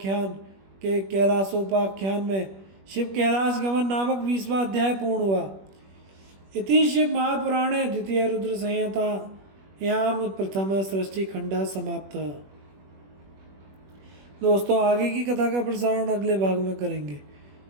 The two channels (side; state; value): left; late; 21 ms